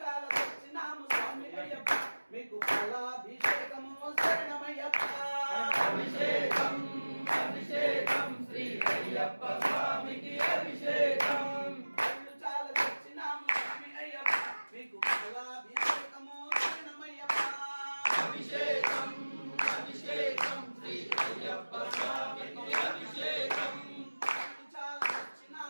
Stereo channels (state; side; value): inverted; both; correlation -1.00